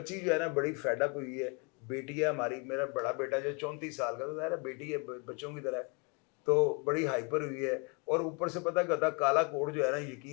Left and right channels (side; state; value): right; quieter; 33.0 dB